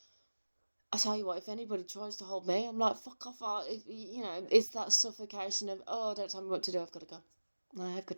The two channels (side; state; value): both; inverted; correlation -1.00